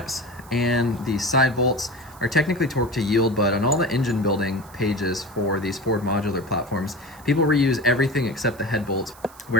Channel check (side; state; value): right; noise; hiss, 23 dB below the sound